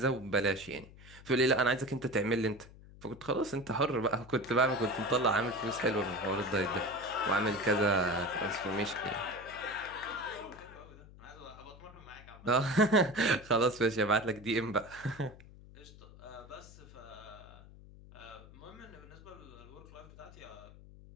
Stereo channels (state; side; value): noise; left; hum, 19 dB below the sound